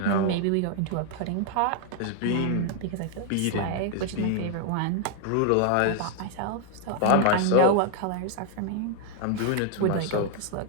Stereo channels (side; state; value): both; different; correlation 0.00